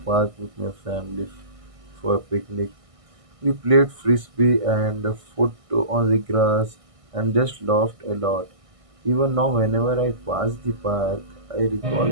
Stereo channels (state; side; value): late; left; 1.6 ms